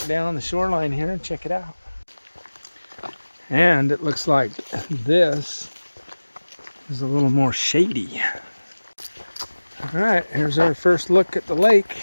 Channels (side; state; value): both; inverted; correlation -1.00